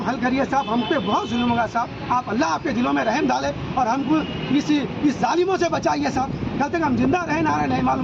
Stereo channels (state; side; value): identical; both; correlation 1.00